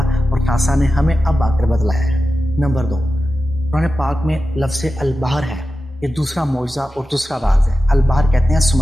اور ناسا نے ہمیں اب آ کر بتلایا ہے۔ نمبر 2، قرآن پاک میں لفظ البحر ہے، یہ دوسرا معجزہ اور دوسرا راز ہے۔ البحر کہتے ہیں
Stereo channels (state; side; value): normal; both; correlation 0.93